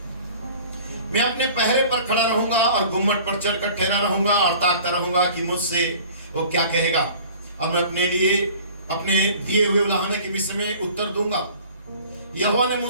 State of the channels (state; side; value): inverted; both; correlation -0.47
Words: मैं अपने पहरे पर खड़ा रहूंगा और गुम्मट पर चढ़कर ठहरा रहूंगा और ताकता रहूंगा कि मुझसे वो क्या कहेगा। अब मैं अपने लिए अपने दिए हुए उलाहने के विषय में उत्तर दूंगा। यहोवा ने